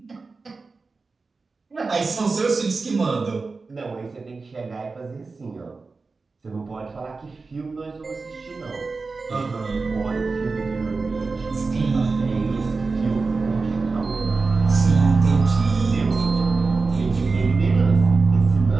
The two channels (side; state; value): left; quieter; 4.1 dB